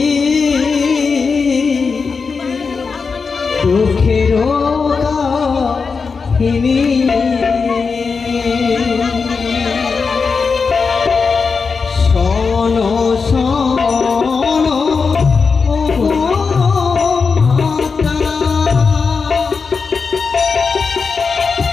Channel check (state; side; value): quieter; right; 5.0 dB